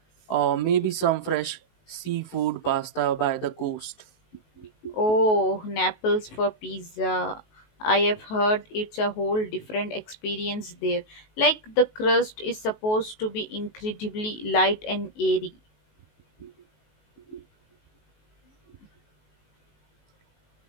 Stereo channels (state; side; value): late; right; 19 ms